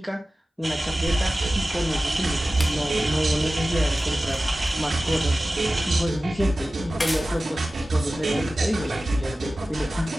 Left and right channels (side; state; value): both; normal; correlation 0.96